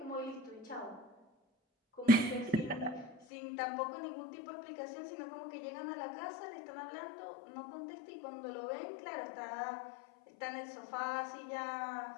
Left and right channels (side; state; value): right; drops out; at 3.2 s